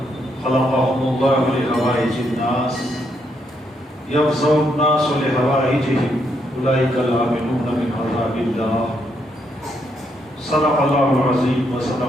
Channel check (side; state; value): both; normal; correlation 0.76